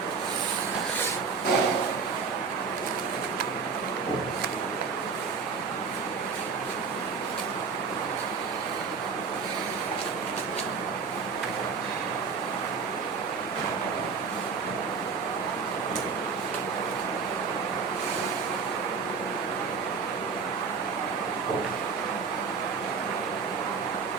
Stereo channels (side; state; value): left; quieter; 5.5 dB